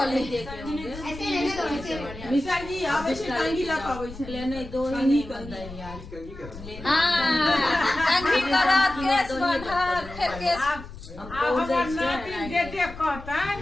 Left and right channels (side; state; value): left; noise; rumble, 14 dB below the sound